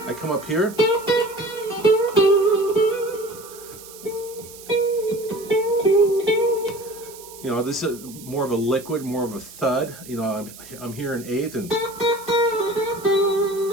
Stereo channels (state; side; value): noise; right; hiss, 17 dB below the sound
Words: I come up here. You know, this is more of a liquid, more of a thud. You know, I'm here in 8th, and